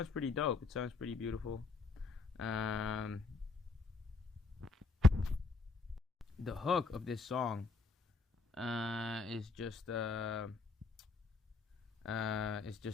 pretty dope. It sounds pretty beautiful. The hook of this song is just it's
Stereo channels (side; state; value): right; quieter; 4.1 dB